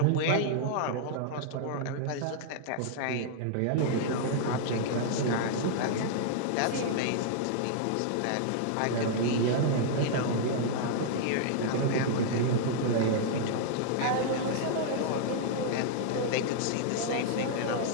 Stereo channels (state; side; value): different; both; correlation -0.01